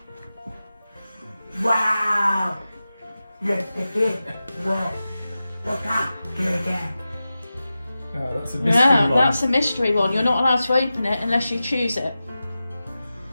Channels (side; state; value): both; inverted; correlation -0.94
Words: Wow. Look at this. What's that? Oh, that's a mystery Yeah, one. that's a mystery one. You're not allowed to open it unless you choose it.